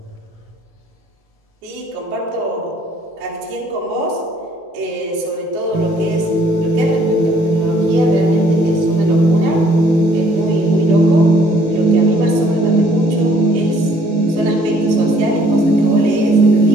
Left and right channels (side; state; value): left; late; 19 ms